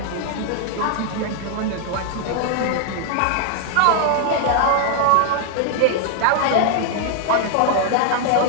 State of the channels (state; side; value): different; both; correlation 0.00